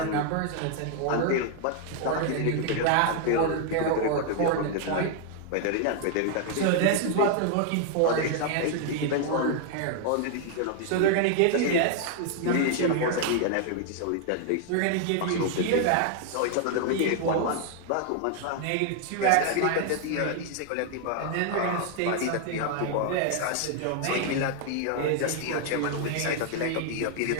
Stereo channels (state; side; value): different; both; correlation 0.00